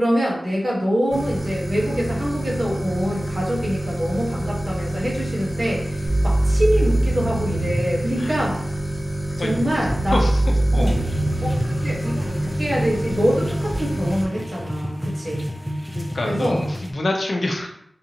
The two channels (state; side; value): normal; both; correlation 0.96